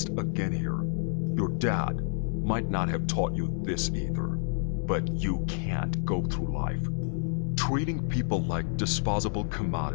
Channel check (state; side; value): silent; right; digital silence